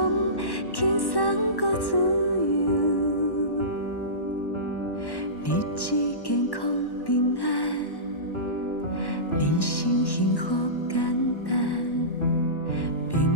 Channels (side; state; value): right; late; 1.1 ms